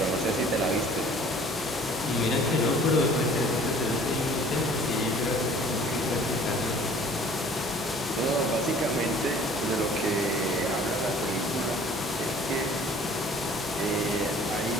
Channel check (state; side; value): normal; both; correlation 0.51